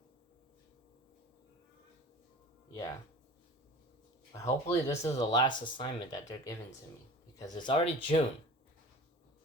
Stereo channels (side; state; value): both; normal; correlation 0.39